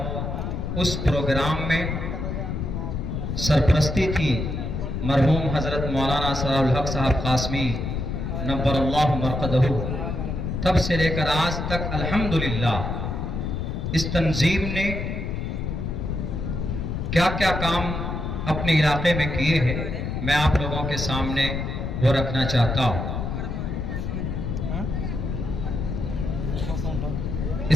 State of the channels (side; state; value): left; noise; rumble, 3 dB below the sound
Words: اس پروگرام میں سرپرستی تھی مرحوم حضرت مولانا ثناء الحق صاحب قاسمی نبر اللہ مرقدہ. تب سے لے کر آج تک الحمدللہ اس تنظیم نے کیا کیا کام اپنے علاقے میں کیے ہیں، میں آپ لوگوں کے سامنے وہ رکھنا چاہتا ہوں.